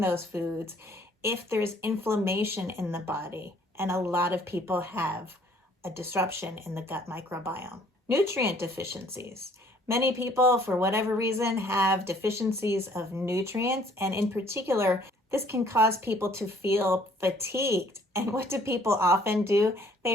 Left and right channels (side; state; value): both; normal; correlation 0.59